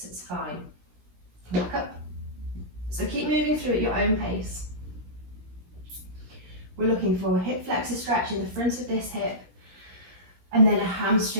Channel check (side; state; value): left; late; 17 ms